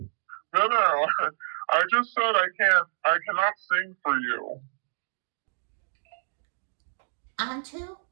No, I just said I cannot sing for you. On to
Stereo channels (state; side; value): silent; left; digital silence